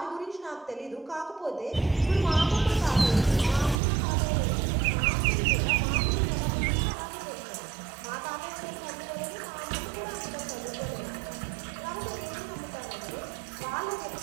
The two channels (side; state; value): left; drops out; at 3.8 s